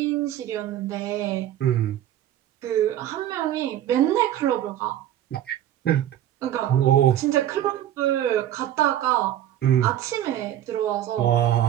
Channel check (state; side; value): quieter; left; 11.9 dB